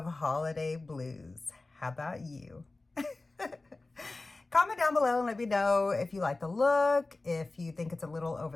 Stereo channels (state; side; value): quieter; right; 3.3 dB